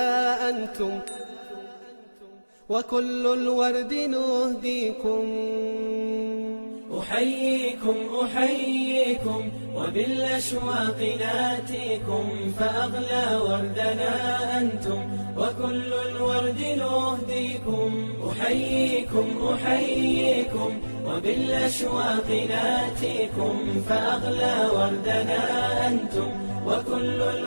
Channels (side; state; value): both; inverted; correlation -1.00